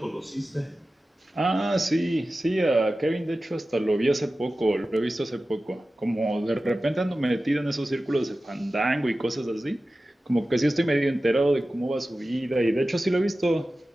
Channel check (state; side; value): normal; both; correlation 0.95